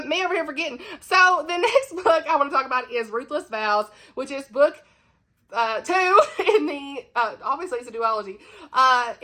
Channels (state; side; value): identical; both; correlation 1.00